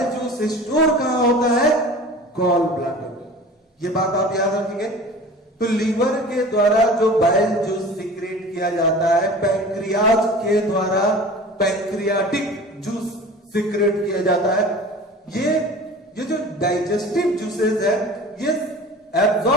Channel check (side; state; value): both; normal; correlation 0.40